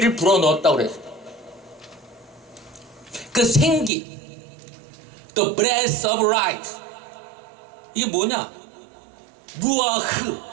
불어넣었다고 그랬어요. 그 생기, the breath of life, 이게 뭐냐? 루아흐,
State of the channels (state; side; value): drops out; left; at 3.9 s